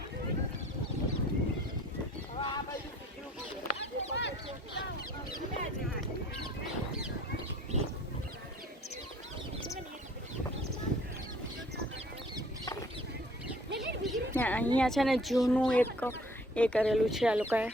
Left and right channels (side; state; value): both; normal; correlation 0.55